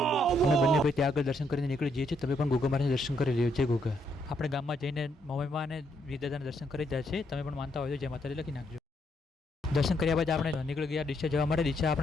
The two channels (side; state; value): both; normal; correlation 0.74